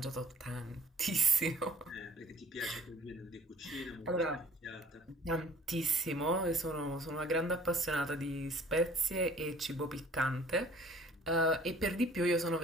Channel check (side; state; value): both; normal; correlation 0.53